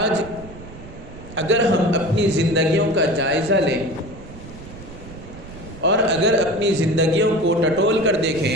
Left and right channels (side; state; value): right; noise; rumble, 16 dB below the sound